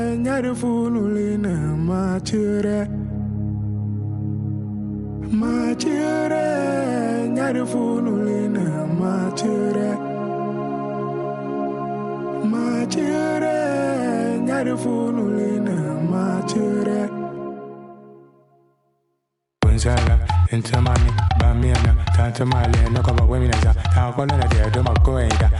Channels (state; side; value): identical; both; correlation 1.00